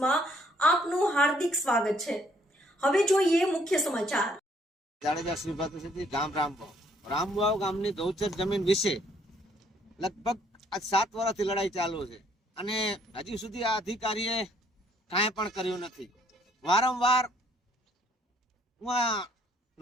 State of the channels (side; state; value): both; normal; correlation 0.65